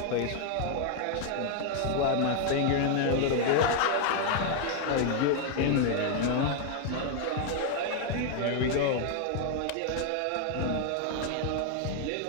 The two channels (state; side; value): different; both; correlation 0.00